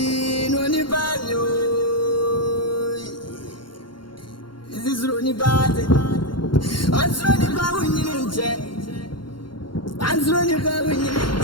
only banyo. This is Ronnie Bad. I'm running back when you're in jet. I'm running back when you're in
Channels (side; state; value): right; late; 0.72 ms